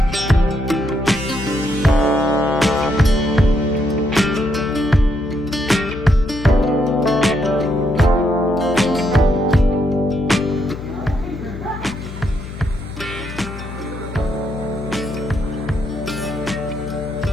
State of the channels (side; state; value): left; noise; hum, 11 dB below the sound